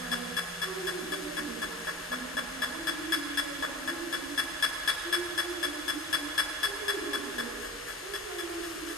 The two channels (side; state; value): both; normal; correlation 0.38